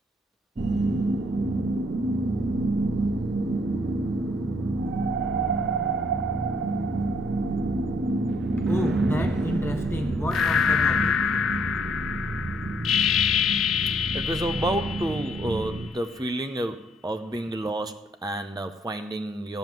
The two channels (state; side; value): normal; both; correlation 0.68